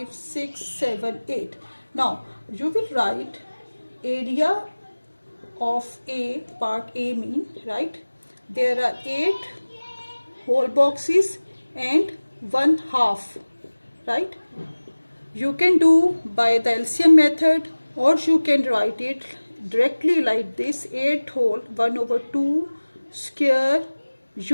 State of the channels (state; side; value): inverted; both; correlation -1.00